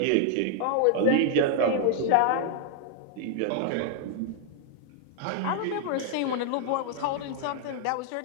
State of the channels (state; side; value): different; both; correlation 0.00